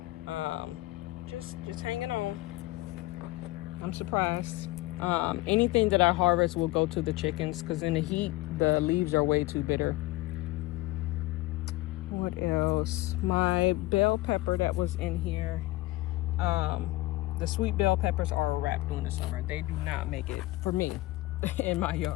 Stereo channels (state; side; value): quieter; right; 18.9 dB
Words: just hanging on. I'm surprised. Anything that I harvest will go to the chickens because in the heat the leaves are way too bitter. What else? My bell pepper that was in here The sweet bell peppers are a wrap during the summer. They do not make it for me in my